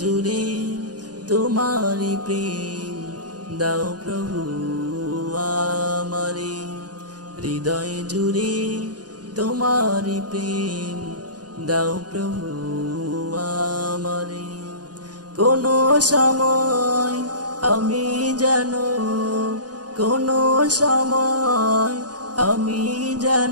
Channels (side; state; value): left; late; 0.69 ms